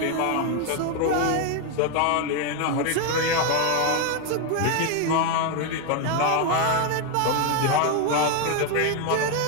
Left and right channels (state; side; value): different; both; correlation 0.01